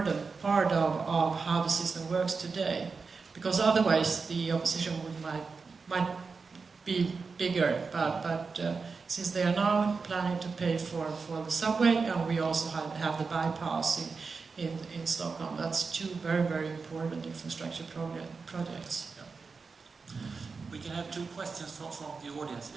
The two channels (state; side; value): quieter; left; 4.7 dB